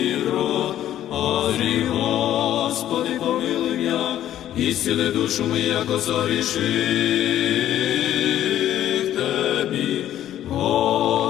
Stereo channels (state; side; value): quieter; right; 12.0 dB